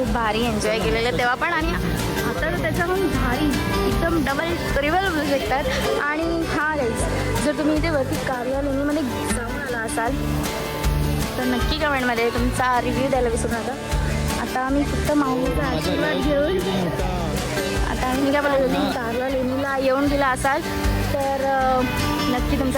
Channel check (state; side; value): identical; both; correlation 1.00